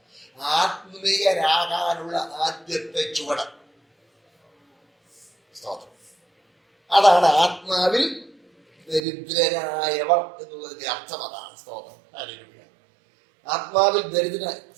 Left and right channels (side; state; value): left; drops out; at 9.0 s